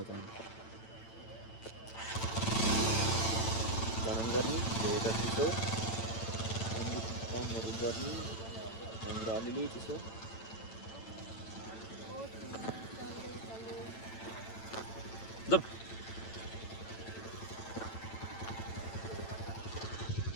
त गरम गर्ने धेरै चिसो कामहरू गर्ने हाम्रो अलिअलि चिसो जब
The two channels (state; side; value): late; right; 9.0 ms